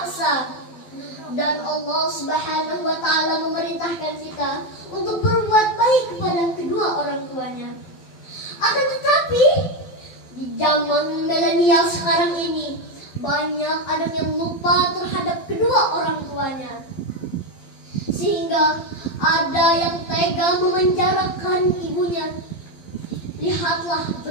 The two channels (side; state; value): right; late; 12 ms